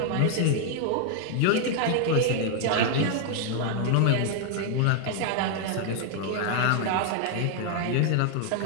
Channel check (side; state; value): both; different; correlation 0.00